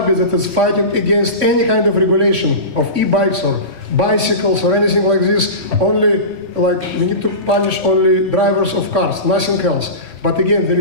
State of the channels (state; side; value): late; left; 3.6 ms